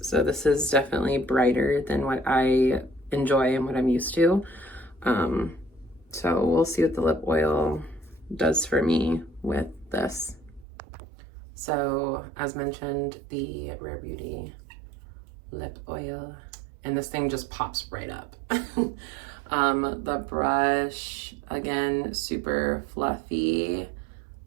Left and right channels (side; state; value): left; drops out; at 10.7 s